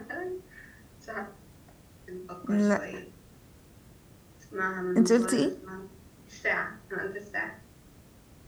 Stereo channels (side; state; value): both; identical; correlation 1.00